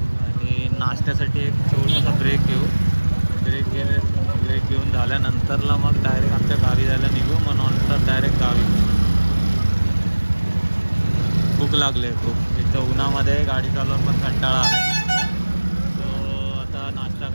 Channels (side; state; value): both; inverted; correlation -1.00